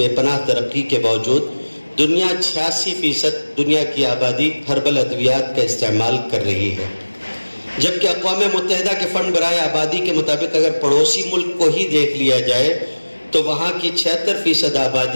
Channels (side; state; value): both; inverted; correlation -1.00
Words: پناہ ترقی کے باوجود دنیا 86% دنیا کی آبادی ہربل ادویات کا استعمال کر رہی ہے، جبکہ اقوام متحدہ کے فنڈ برائے آبادی کے مطابق اگر پڑوسی ملک کو ہی دیکھ لیا جائے تو وہاں کی 76%